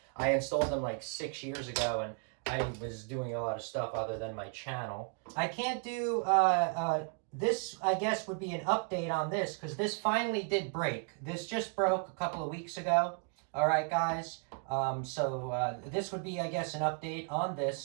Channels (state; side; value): quieter; left; 39.3 dB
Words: I installed them like 6 years ago and I was doing a lot of stuff other than my channel. I can't do, this I guess would be an update on this because this finally did break. This just broke a couple of weeks ago. All right, guys. This would be, I guess, an update on